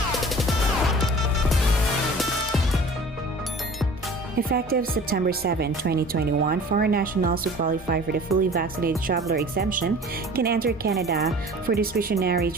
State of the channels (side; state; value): both; normal; correlation 0.44